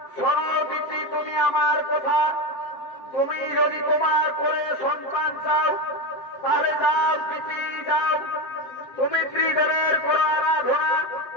শোনো দিদি, তুমি আমার কথা, তুমি যদি তোমার কোলে সন্তান চাও তাহলে যাও দিদি যাও, তুমি ত্রিদেবের করো আরাধনা,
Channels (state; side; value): late; right; 7.7 ms